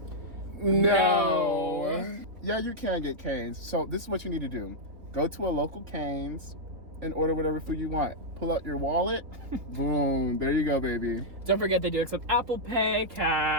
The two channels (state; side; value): late; left; 3.9 ms